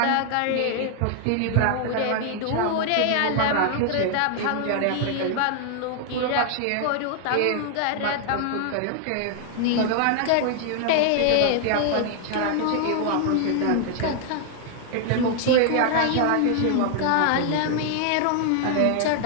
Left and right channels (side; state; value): both; different; correlation 0.00